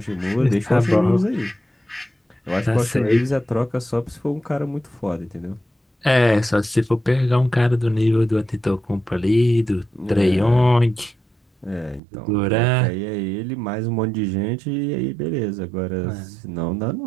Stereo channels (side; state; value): left; drops out; at 12.0 s